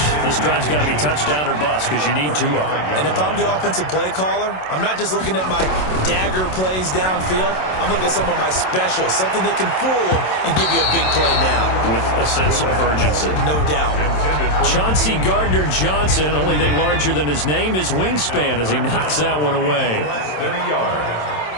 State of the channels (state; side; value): late; right; 27 ms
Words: this drive's got to be touchdown or bust because you need 2 of them. And if I'm the offensive play caller, I'm not just looking at my dagger plays downfield. I'm looking at some of my specials, something that can fool them and give you a big play now. With a sense of urgency. No doubt. Chauncey Gardner-Johnson, only thing larger than his name is wingspan as he knocks that one away. Less than a yard.